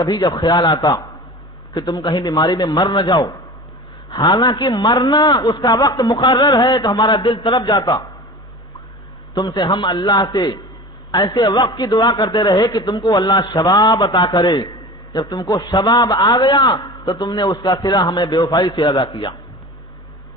جب خیال آتا کہ تم کہیں بیماری میں مر نہ جاؤ، حالانکہ مرنا اس کا وقت مقرر ہے، تو ہمارا دل تڑپ جاتا۔ تم سے ہم اللہ سے ایسے وقت کی دعا کرتے رہے کہ تم کو اللہ شباب عطا کرے، جب تم کو شباب آ گیا تو تم نے اس کا صلہ ہمیں بے وفائی سے ادا کیا۔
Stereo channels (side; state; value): both; normal; correlation 0.36